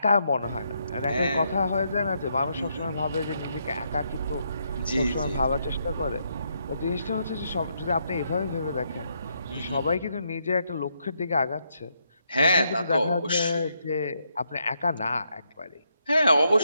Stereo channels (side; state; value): both; inverted; correlation -0.78